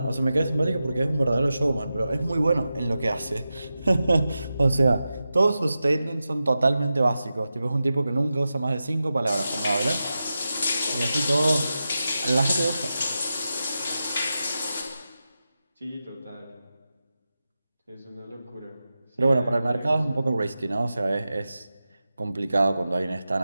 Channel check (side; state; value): both; inverted; correlation -0.92